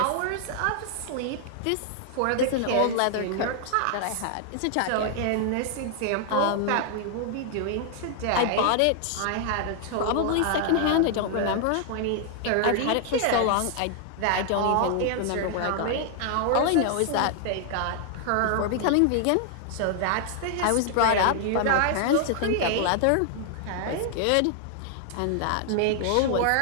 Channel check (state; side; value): different; both; correlation 0.00